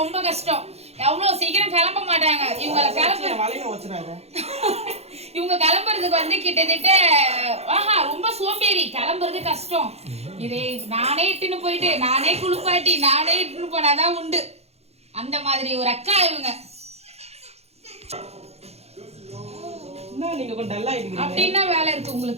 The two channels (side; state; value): left; late; 0.30 ms